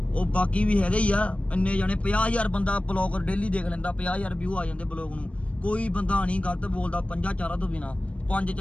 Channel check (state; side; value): late; right; 0.063 ms